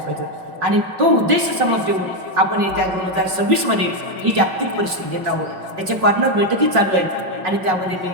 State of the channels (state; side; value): late; left; 5.4 ms